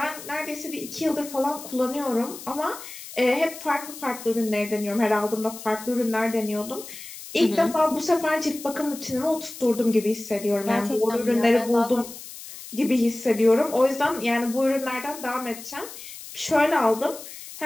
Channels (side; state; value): left; noise; hiss, 13 dB below the sound